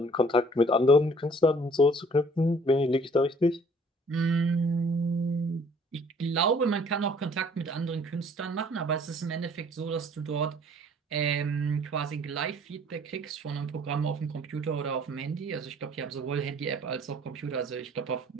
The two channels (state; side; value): normal; both; correlation 0.56